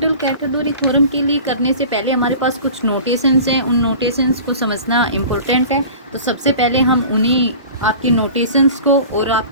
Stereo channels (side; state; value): both; inverted; correlation -0.40